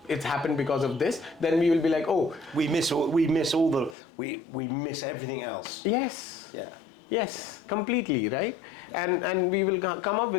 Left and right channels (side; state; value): right; drops out; at 4.0 s